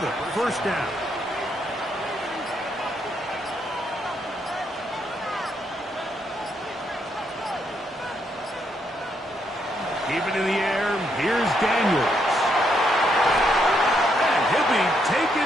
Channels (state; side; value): normal; both; correlation 0.76